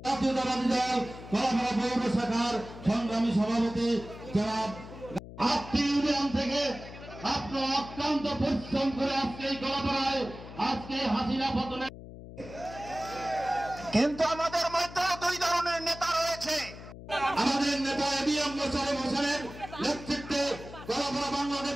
জাতীয়তাবাদী দল কলাপাড়া পৌর শাখার সংগ্রামী সভাপতি জনাব ইউনিয়ন থেকে আপনার অক্লান্ত পরিশ্রম করে আজকে এই কলাপাড়ায় আজকে হাসিনা পতনে। কিন্তু আমাদের মধ্যে দুই ধরনের নেতা রয়েছে। আমাদের নেতা ABM মোশাররফ হোসেনের নেতৃত্বে কলাপাড়া বাংলাদেশ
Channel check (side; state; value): left; noise; hum, 14 dB below the sound